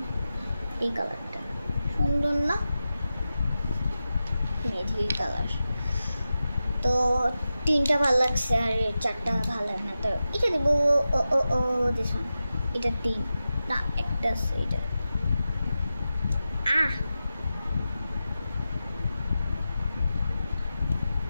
এই কালারটা সুন্দর না, মেঝি কালার। তো 3টা ভালো লাগছে আর 4টা ভালো লাগে না, তো এটা দিব দিস ওয়ান, এটা 3 না, একটা আছে এটা।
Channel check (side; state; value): both; inverted; correlation -0.92